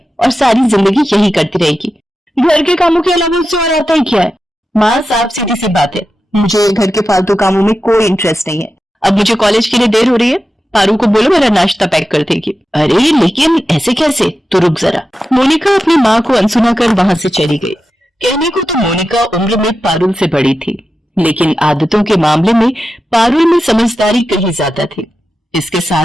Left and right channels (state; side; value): normal; both; correlation 0.91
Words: और सारी जिंदगी यही करती रहेगी। घर के कामों के अलावा उससे और आता ही क्या है? माँ, साफ सीधी सी बात है, मुझे घर के फालतू कामों में कोई इंटरेस्ट नहीं है। अब मुझे कॉलेज के लिए देर हो रही है, पारू को बोलो मेरा नाश्ता पैक कर देगी। अरे लेकिन ऐसे कैसे? तो रुक जरा। मोनिका अपनी माँ को अनसुना कर वहां से चली गई। कहने को तो मोनिका उम्र में पारुल से बड़ी थी, लेकिन आदतों के मामले में पारुल में समझदारी कहीं ज्यादा थी। इसके